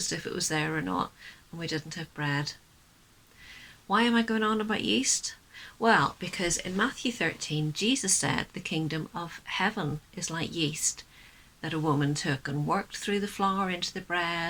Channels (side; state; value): both; identical; correlation 1.00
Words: if it was there or not, and we didn't have bread. Why am I going on about yeast? Well, because in Matthew 13, Jesus said the kingdom of heaven is like yeast that a woman took and worked through the flour into the